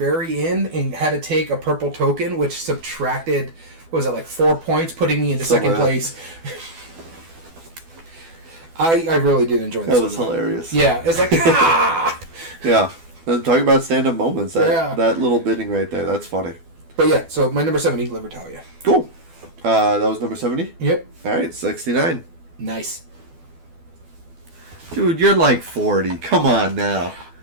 end and had to take a purple token, which subtracted, 4 points, putting me into second place. I really did enjoy this. That was hilarious. Yeah, it's like, Yeah, talking about stand-up moments. That little bidding right there, that's funny. But yeah, so my number 70, Libertalia. Cool. That was number 70? Yep. All right, 69. Nice. Dude, you're like 40. Come on now.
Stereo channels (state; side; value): late; left; 12 ms